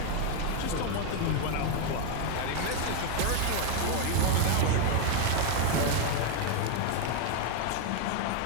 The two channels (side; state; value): both; different; correlation 0.01